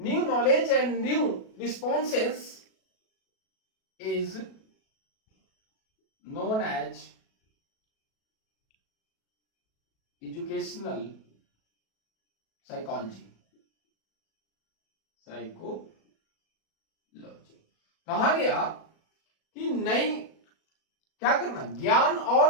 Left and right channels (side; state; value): right; late; 37 ms